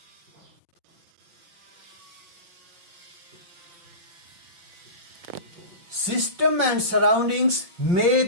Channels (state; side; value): late; left; 5.5 ms